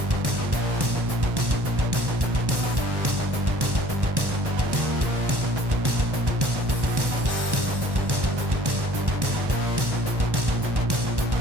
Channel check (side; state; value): left; late; 1.1 ms